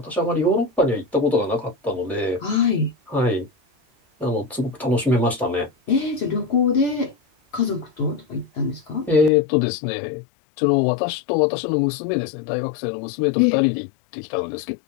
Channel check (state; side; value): drops out; right; at 9.3 s